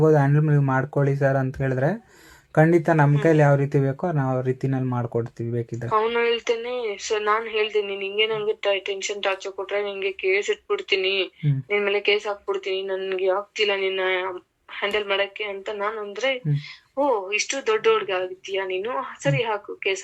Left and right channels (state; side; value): identical; both; correlation 1.00